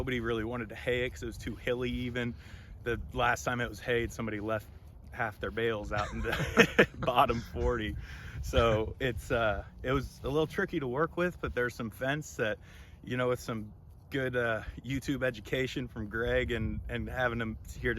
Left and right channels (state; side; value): identical; both; correlation 1.00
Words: really wanted to hay it because it was too hilly even. The last time it was hayed, somebody left half their bales out in the bottom 40. So it was a little tricky to work with, but there's some fence that, with some good YouTube education from Greg and having him here